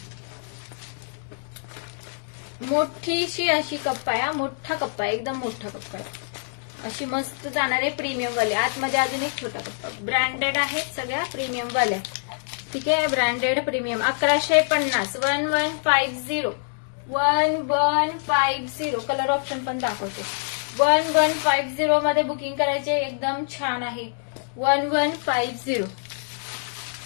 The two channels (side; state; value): right; silent; digital silence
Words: मोठीशी अशी कप्पा आहे. मोठा कप्पा आहे, एकदम मोठा कप्पा आहे. अशी मस्त जाणार आहे प्रीमियम वाले. आतमध्ये अजून एक छोटा कप्पा. ब्रँडेड आहेत सगळ्या प्रीमियम वाल्या. ठीक आहे. Branded premium 1150 1150 1150. कलर ऑप्शन पण दाखवते. 1150 मध्ये बुकिंग करायचे. एकदम छान आहे. 1150.